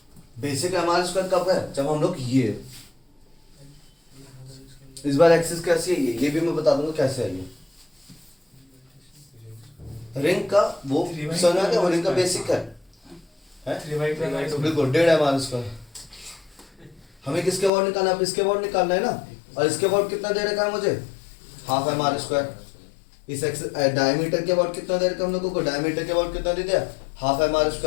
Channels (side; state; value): right; drops out; at 17.7 s